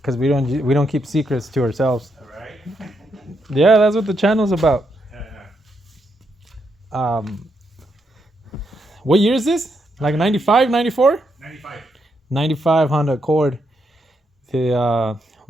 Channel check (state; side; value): normal; both; correlation 0.80